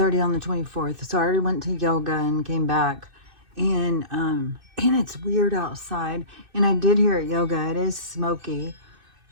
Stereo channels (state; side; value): late; left; 2.6 ms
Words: on the 24th. So I already went to yoga and came back. And it's weird outside. And I did hear at yoga, it is smoky,